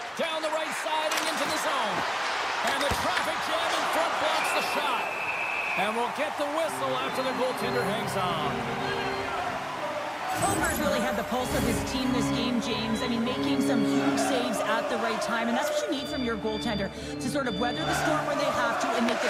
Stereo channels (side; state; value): both; identical; correlation 1.00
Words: Down the right side and into the zone. And the traffic jam in front blocks the shot. And we'll get the whistle after the goaltender hangs on. Homer's really had the pulse of his team this game, James. I mean, making some huge saves at the right time, and that's what you need from your goaltender, to sort of weather the storm when they have to and make